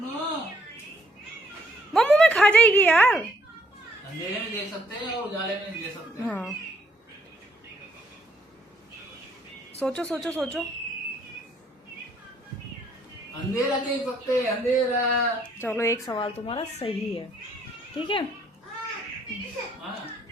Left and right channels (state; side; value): normal; both; correlation 0.68